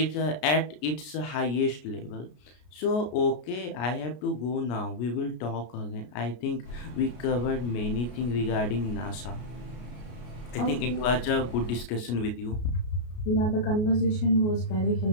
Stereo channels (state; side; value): late; right; 33 ms